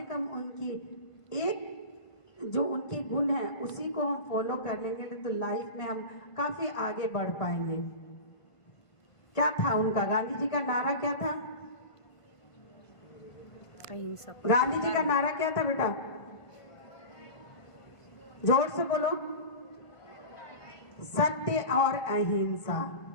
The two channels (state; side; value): late; right; 1.5 ms